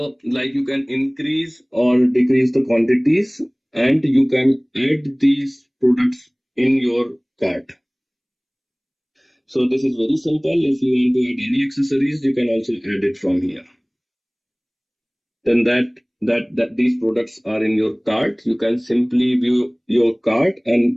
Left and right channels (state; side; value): identical; both; correlation 1.00